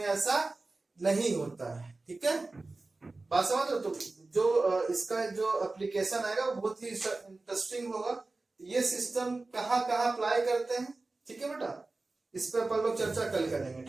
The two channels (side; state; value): left; quieter; 3.4 dB